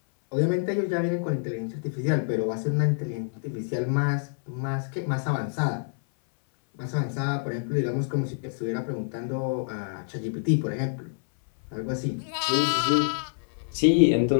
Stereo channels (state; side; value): silent; right; 60 dB below the other